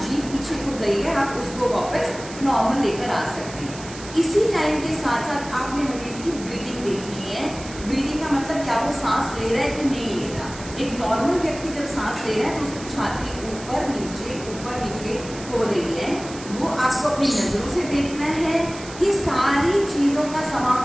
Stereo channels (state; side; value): noise; right; hiss, 15 dB below the sound